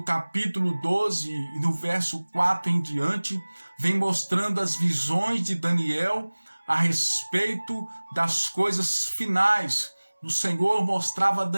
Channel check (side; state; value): both; inverted; correlation -1.00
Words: capítulo 12, no verso 4 em diante, vem mostrando as visões de Daniel a respeito das coisas finais. O Senhor mostrava a